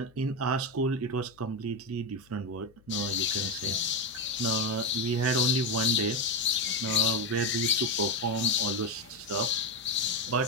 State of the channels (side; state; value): left; noise; hum, 29 dB below the sound